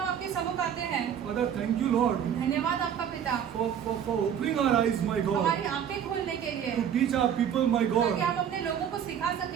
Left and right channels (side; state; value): left; quieter; 8.8 dB